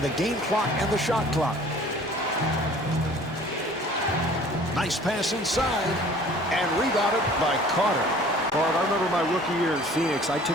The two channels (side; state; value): both; normal; correlation 0.50